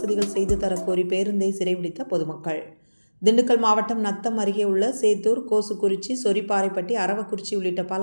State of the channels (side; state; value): both; inverted; correlation -1.00